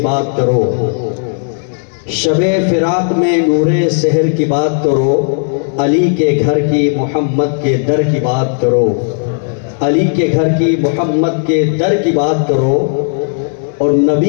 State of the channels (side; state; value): right; silent; digital silence